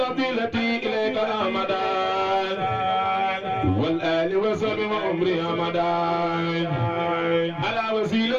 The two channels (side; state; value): both; identical; correlation 1.00